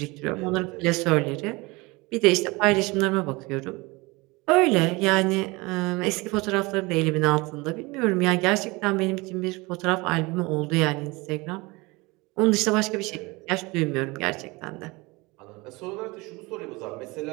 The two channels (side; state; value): left; quieter; 24.3 dB